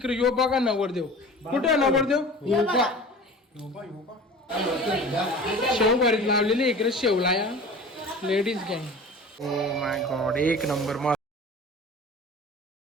यो बघा नवरदेव. कुठे नवरदेव? शेव भरीत लावलेली इकडे शेवला या लेडीज गँग. ओ माय गॉड एक नंबर मस्त.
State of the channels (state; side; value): normal; both; correlation 0.40